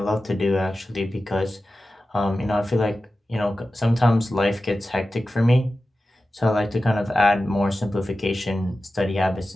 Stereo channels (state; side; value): normal; both; correlation 0.94